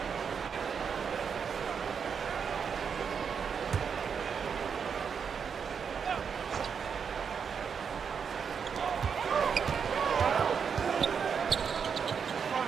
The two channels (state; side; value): quieter; left; 6.6 dB